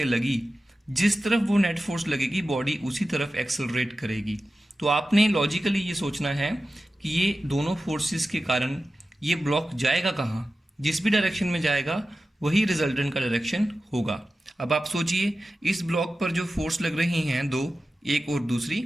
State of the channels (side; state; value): both; normal; correlation 0.94